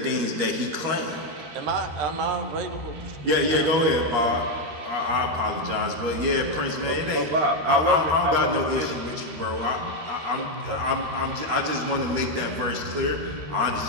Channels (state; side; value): late; left; 13 ms